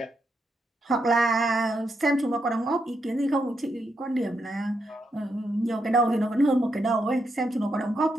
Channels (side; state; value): both; normal; correlation 0.81